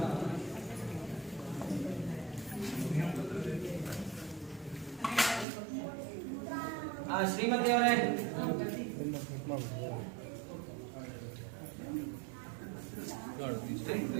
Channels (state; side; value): drops out; left; at 5.5 s